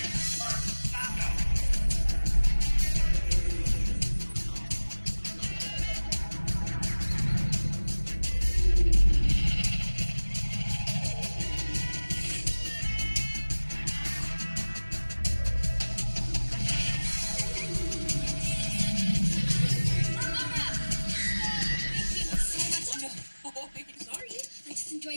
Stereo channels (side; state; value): both; inverted; correlation -1.00